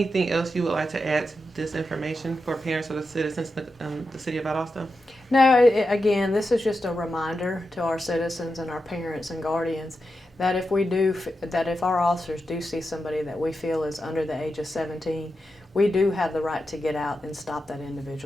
else you would like to add to this information for parents or the citizens in the city of Valdosta? No, again, this is just a reminder to our citizens and our parents and guardians that if our officers do see somebody that we feel is under the age of 17, we do have the right to get out and stop that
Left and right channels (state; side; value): normal; both; correlation 0.88